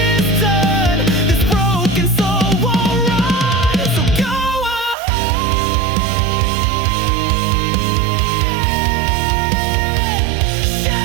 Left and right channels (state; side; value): drops out; left; at 5.0 s